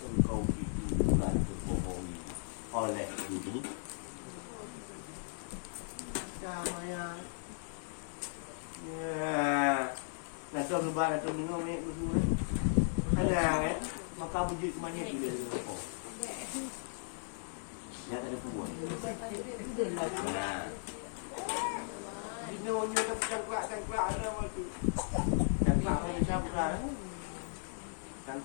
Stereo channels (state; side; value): silent; right; digital silence